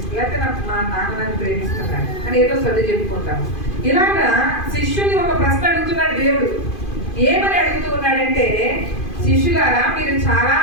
లేకపోతే మా నాన్న నన్ను ప్రేమిస్తున్నాడు అని ఏదో సర్ది చెప్పుకుంటాం. ఇలాగా శిష్యుని ఒక ప్రశ్న అడుగుతున్నాడు దేవుడు. ఏమని అడుగుతూ ఉన్నాడంటే, శిష్యులారా, మీరు చాలా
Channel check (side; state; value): right; late; 2.5 ms